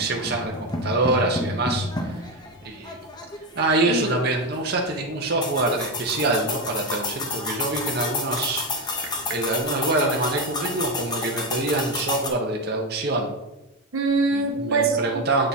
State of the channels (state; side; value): normal; both; correlation 0.11